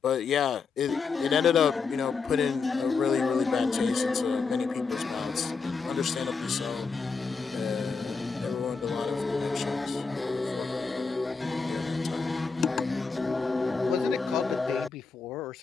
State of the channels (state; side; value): quieter; right; 4.9 dB